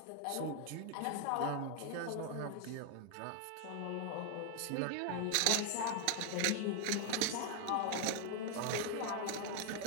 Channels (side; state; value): both; different; correlation 0.00